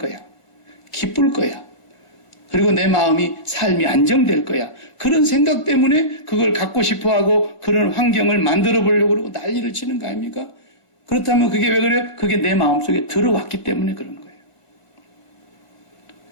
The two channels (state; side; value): late; right; 1.5 ms